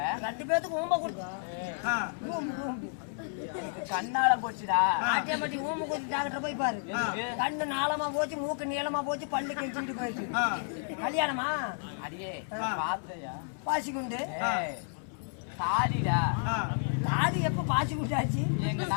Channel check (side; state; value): right; silent; 57 dB below the other